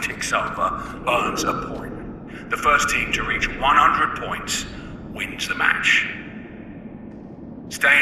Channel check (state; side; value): identical; both; correlation 1.00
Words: ticks over, earns a point. The first team to reach 100 points wins the match.